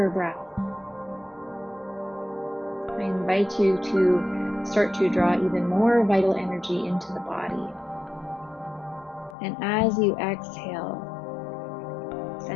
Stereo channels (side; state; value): right; drops out; at 9.3 s